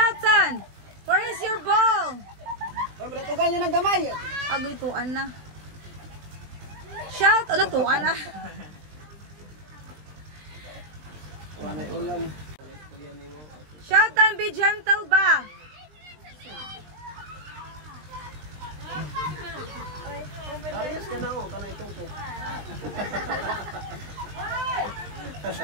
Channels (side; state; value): left; late; 20 ms